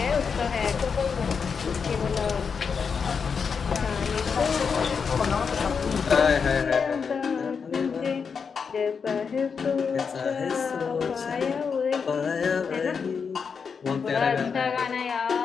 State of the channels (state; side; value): quieter; right; 5.9 dB